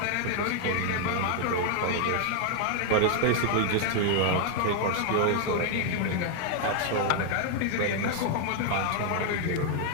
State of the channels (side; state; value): both; different; correlation 0.00